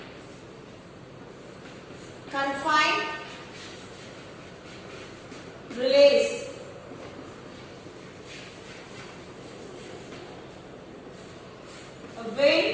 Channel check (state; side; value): identical; both; correlation 1.00